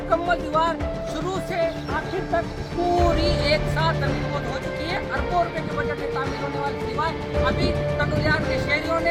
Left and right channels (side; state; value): both; identical; correlation 1.00